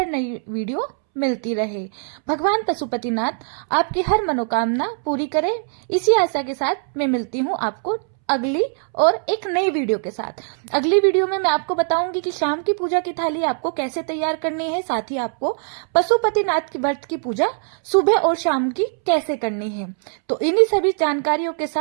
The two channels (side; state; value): left; silent; 65 dB below the other